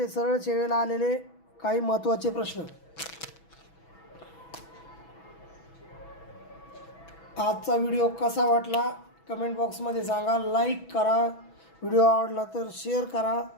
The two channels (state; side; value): late; right; 6.1 ms